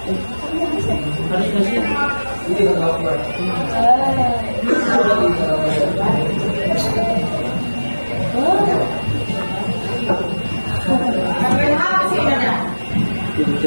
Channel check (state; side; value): inverted; both; correlation -1.00